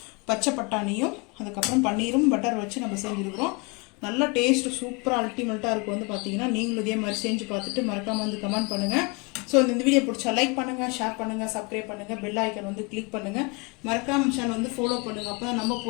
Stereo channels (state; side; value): quieter; right; 29.8 dB